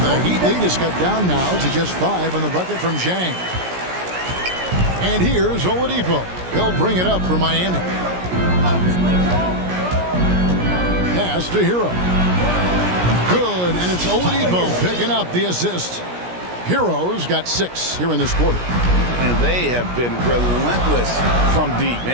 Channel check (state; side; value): late; left; 17 ms